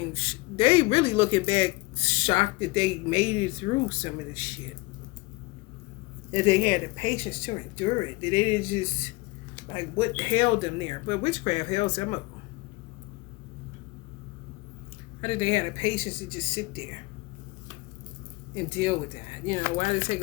really looking back shocked that they made it through some of this shit. That they had the patience to endure it. That they didn't just, what held them there. But witchcraft held some of them. How did they have the patience to just sit there and deal with that? You know, why did it take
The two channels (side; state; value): right; quieter; 23.1 dB